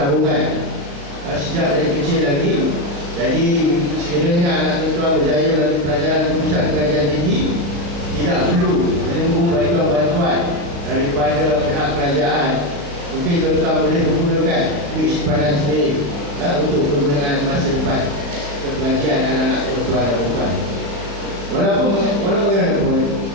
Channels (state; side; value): late; left; 36 ms